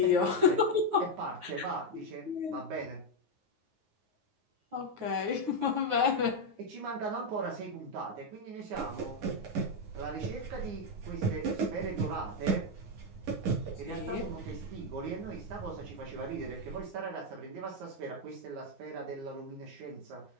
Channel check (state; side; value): late; left; 9.5 ms